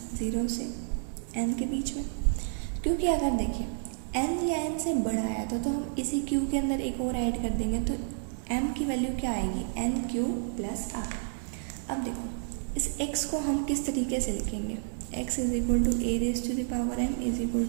0 से n के बीच में, क्योंकि अगर देखिए n या n से बड़ा आया तो हम इसी q के अंदर एक और ऐड कर देंगे तो m की वैल्यू क्या आएगी, nq प्लस r। अब देखो इस x को हम किस तरीके से लिखेंगे, x is equal to a raise to the power m is equal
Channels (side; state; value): left; silent; digital silence